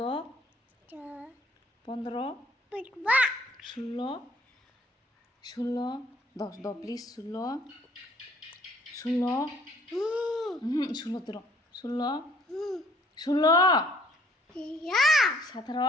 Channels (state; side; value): normal; both; correlation 0.60